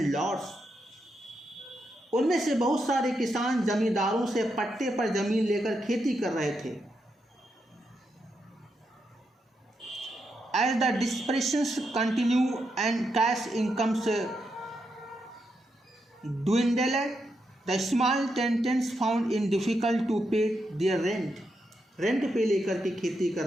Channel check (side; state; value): both; normal; correlation 0.83